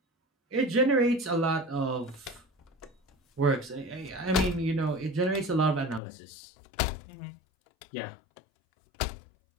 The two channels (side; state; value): right; drops out; at 6.0 s